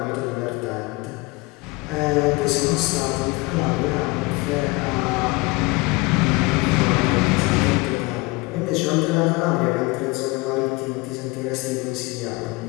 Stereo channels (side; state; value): right; quieter; 24.7 dB